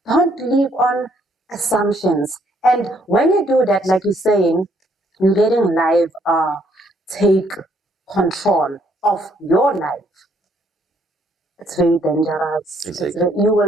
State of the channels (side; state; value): both; normal; correlation 0.68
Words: Don't live on assumptions. And when you do that, like you're saying, you're letting life take control of your life. It's very dangerous. Exactly. You